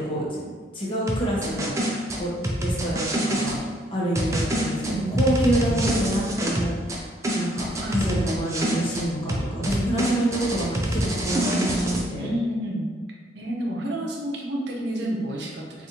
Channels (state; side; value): normal; both; correlation 0.68